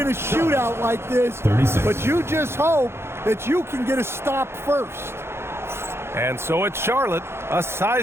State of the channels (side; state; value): left; late; 0.12 ms